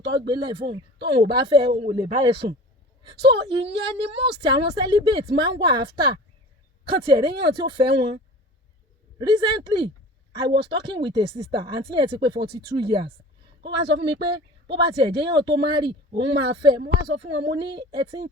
tó gbélé fóun tóun ò bá fẹ́ òun ò lè bá ẹ sùn. So ìyẹn ni most àwọn celibate máa ń wà after kan tiẹ̀ réyàn tí ó fẹ́ wọn. Recently I was talking with a sister àǹtí yẹn ti pé 42 years ó wá sọ fún mi pé bó bá tiẹ̀ jẹ́ yàn tó marry òun máa fẹ́. Mo wá sọ fún wọn mo ní ẹ ti ń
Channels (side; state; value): both; normal; correlation 0.40